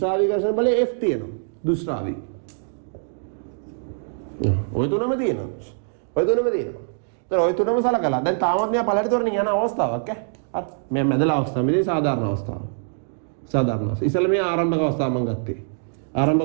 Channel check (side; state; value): left; silent; digital silence